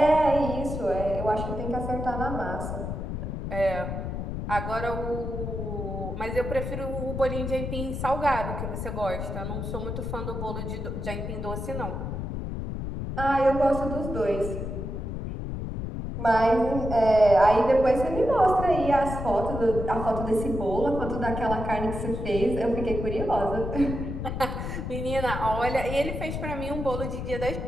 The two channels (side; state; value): left; noise; rumble, 5 dB below the sound